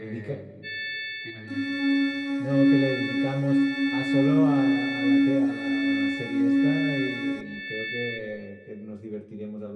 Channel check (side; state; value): both; identical; correlation 1.00